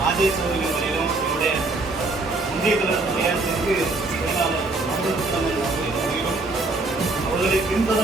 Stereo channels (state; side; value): quieter; left; 3.2 dB